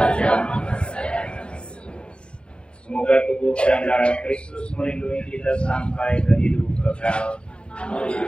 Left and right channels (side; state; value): right; late; 0.053 ms